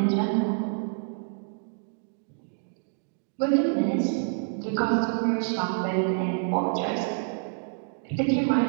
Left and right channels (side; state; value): left; silent; digital silence